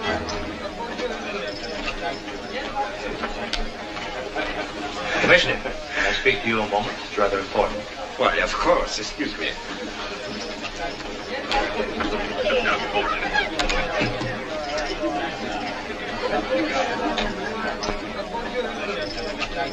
Commissioner, can I speak to you a moment? It's rather important. Why, of course. Excuse me.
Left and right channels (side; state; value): both; identical; correlation 1.00